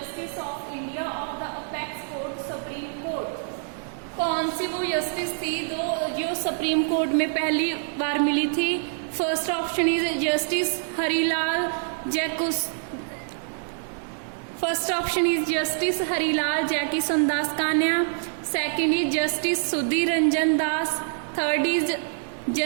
of India of the Apex Court Supreme Court? कौन सी वो justice थी जो supreme court में पहली बार मिली थी? First option is justice Harilal Jekisundas Kania, second is justice Sudhir Ranjan Das, third is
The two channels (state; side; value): silent; left; 61 dB below the other